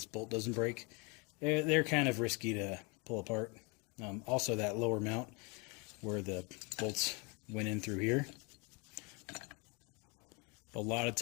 bolt doesn't break. They're kind of risky to pull apart. Also, that lower mount where the bolts went in through here, a lot of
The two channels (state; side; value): quieter; right; 29.8 dB